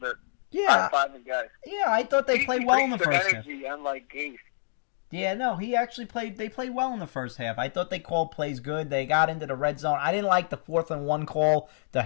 Yeah, High-fiving guys. yeah. I thought they played well in the brings first half. energy, unlike Gase. Yeah, no, he actually played. They played well in the first half. I thought they called plays good. They got into the red zone. I didn't like the 4th-and-1 call, the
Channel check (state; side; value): silent; right; digital silence